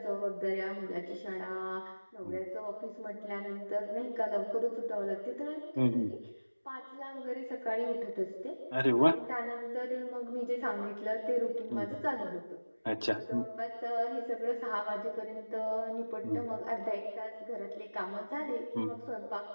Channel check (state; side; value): inverted; both; correlation -1.00